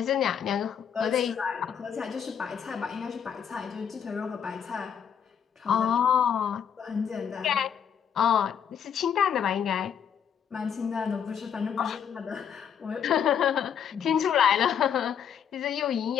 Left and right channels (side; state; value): right; quieter; 8.1 dB